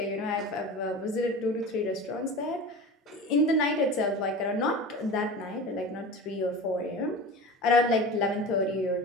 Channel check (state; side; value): normal; both; correlation 0.32